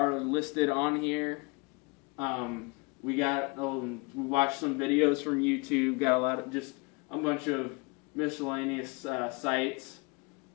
listed on here. We watched some videos from YouTube, got a bunch of miscellaneous sites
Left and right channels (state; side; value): quieter; right; 29.2 dB